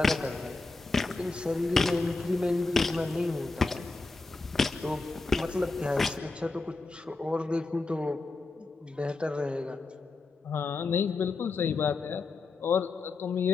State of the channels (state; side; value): quieter; right; 3.7 dB